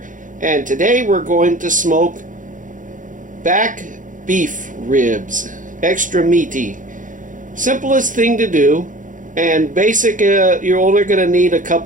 and today we're going to smoke back beef ribs. Extra meaty. Simplest thing to do, and basic. You're only going to need a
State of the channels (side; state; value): left; late; 0.38 ms